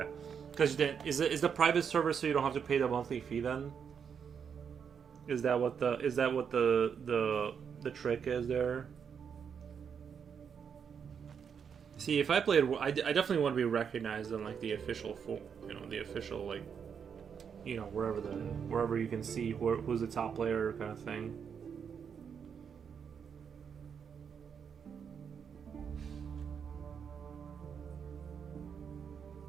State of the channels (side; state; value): left; quieter; 7.1 dB